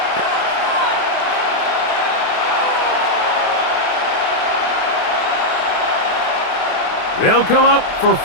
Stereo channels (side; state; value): right; late; 28 ms